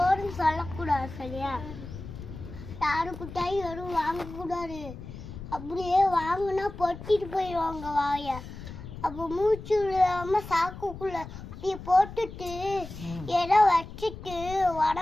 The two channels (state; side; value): noise; left; rumble, 12 dB below the sound